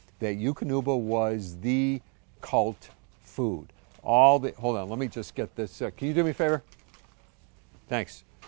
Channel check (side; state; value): left; quieter; 36.8 dB